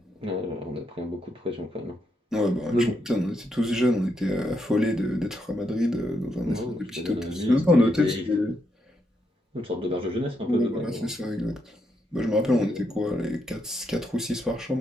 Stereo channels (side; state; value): both; normal; correlation 0.79